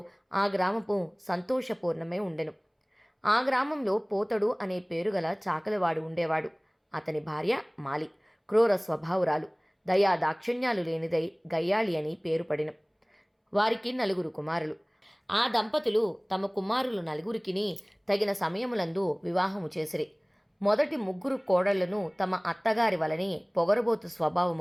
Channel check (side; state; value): both; identical; correlation 1.00